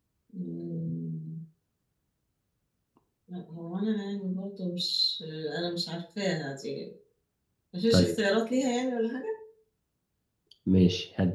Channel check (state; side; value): identical; both; correlation 1.00